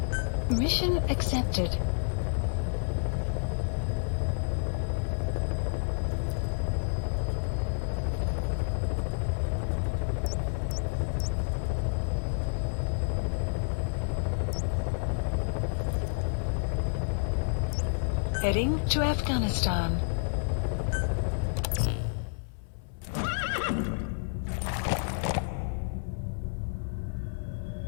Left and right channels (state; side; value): silent; right; 58 dB below the other